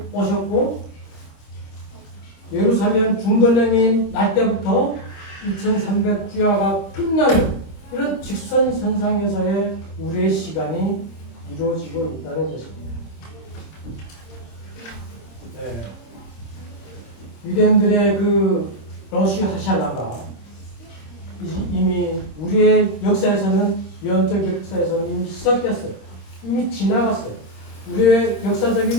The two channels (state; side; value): late; right; 26 ms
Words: 오셨고 예루살렘 중건령이 날 때부터 2300주야가 끝나는 이런 직선선상에서의 우리의 시간이 이루어지고 있다는 것입니다. 유대인들의 그 러시 하샬라가 이미 우리의 역사에서는 영적 역사에서는 이미 시작됐어요. 이미 지나갔어요. 우리의